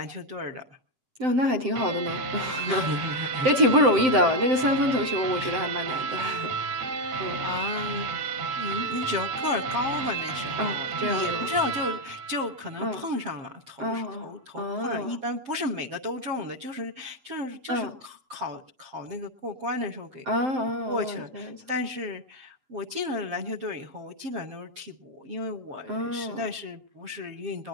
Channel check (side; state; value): left; late; 7.7 ms